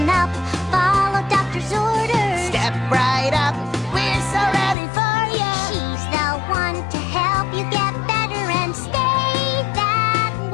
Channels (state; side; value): drops out; right; at 4.8 s